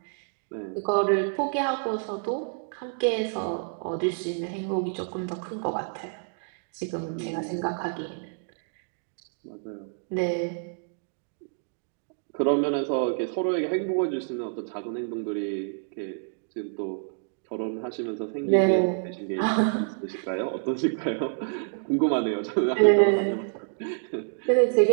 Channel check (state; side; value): silent; left; digital silence